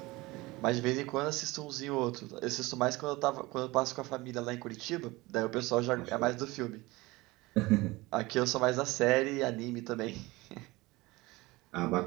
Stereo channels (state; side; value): quieter; left; 21.3 dB